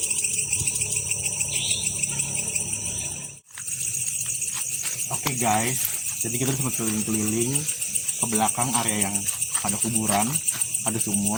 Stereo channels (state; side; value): identical; both; correlation 1.00